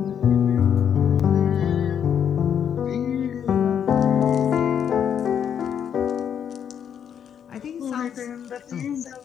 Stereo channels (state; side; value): quieter; right; 8.4 dB